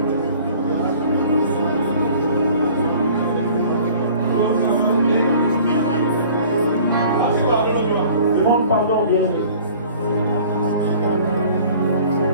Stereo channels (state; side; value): inverted; both; correlation -0.49